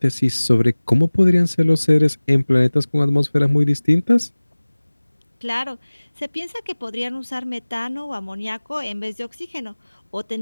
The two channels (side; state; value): both; inverted; correlation -1.00